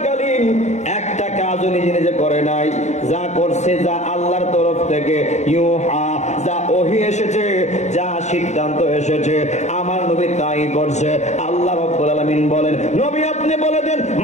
একটা কাজও নিজে নিজে করে নাই, যা করছে যা আল্লাহর তরফ থেকে ইউহা, যা ওহী এসেছে, যা সিদ্ধান্ত এসেছে, আমার নবী তাই করছে। আল্লাহ রাব্বুল আলামিন বলেন, নবী আপনি বলে দেন,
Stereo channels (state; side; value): late; right; 0.33 ms